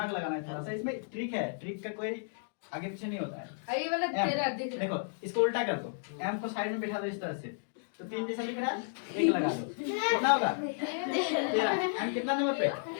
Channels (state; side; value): silent; right; digital silence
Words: लगाना है थोड़ा सा। इसमें ट्रिक है, ट्रिक का कोई आगे पीछे नहीं होता है। ये वाला एम, तेरा दिख रहा देखो इसको उल्टा कर दो, एम को साइड में बैठा दो इस तरह से, तो 3 जैसा दिख रहा है, एक लगा दो, कितना होगा? 13। एम कितना नंबर पे?